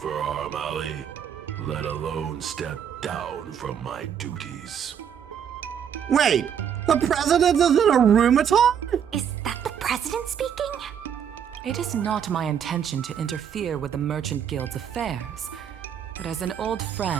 Arum Alley, let alone step down from my duties. Wait, the president is in a rheumaton? Is that the president speaking? It is not my intention to interfere with the Merchant Guild's affairs, but as an old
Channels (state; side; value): quieter; left; 8.4 dB